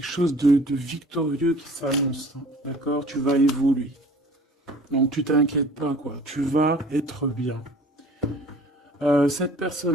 chose de victorieux qui s'annonce, hein, d'accord? Tu vas évoluer. Donc tu t'inquiètes pas, quoi. Tu vas être bien. Cette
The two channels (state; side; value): normal; both; correlation 0.48